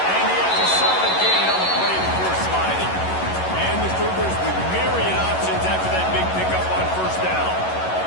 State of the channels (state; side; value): late; right; 11 ms